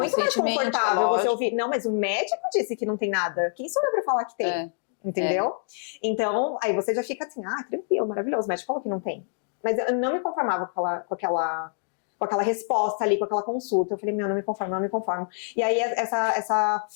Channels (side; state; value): right; silent; digital silence